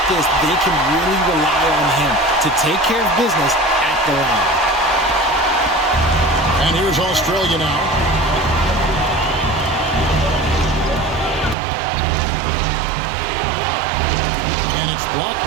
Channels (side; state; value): left; drops out; at 11.6 s